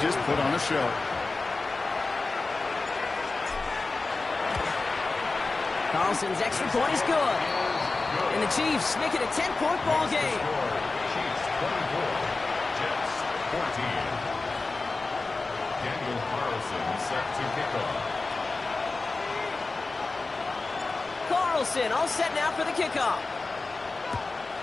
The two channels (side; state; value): right; quieter; 3.6 dB